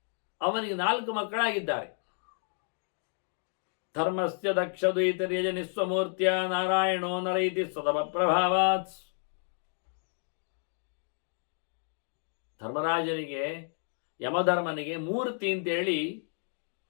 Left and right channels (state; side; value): silent; right; 57 dB below the other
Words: ಅವನಿಗೆ 4 ಮಕ್ಕಳಾಗಿದ್ದಾರೆ. ಧರ್ಮಸ್ಯ ದಕ್ಷದ್ವೈತರ್ಯಜ ನಿಸ್ವಮೂರ್ತ್ಯ ನಾರಾಯಣೋ ನರೈತಿ ಸದಮ ಪ್ರಭಾವಾತ್. ಧರ್ಮರಾಜನಿಗೆ, ಯಮಧರ್ಮನಿಗೆ ಮೂರ್ತಿ ಅಂತೇಳಿ